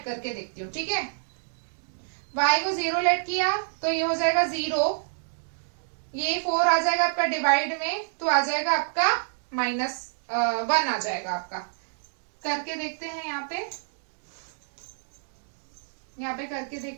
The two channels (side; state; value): left; silent; digital silence